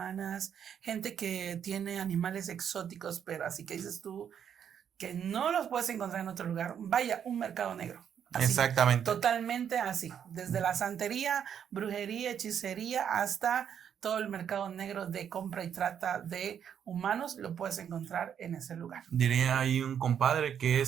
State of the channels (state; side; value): quieter; left; 8.5 dB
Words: gente que tiene animales exóticos, pero así que dices tú que no los puedes encontrar en otro lugar. Vaya, un mercado negro. Así, exactamente. Totalmente así. Desde la santería, brujería, hechicería, hasta todo el mercado negro de compra y trata de humanos, lo puedes encontrar en ese lugar. Diría ahí un compadre que